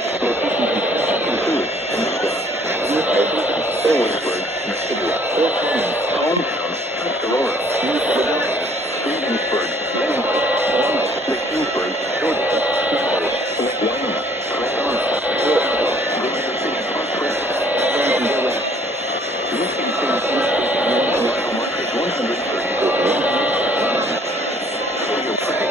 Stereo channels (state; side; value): normal; both; correlation 0.59